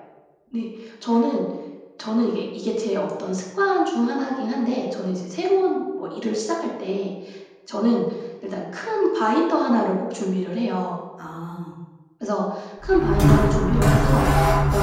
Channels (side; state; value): both; identical; correlation 1.00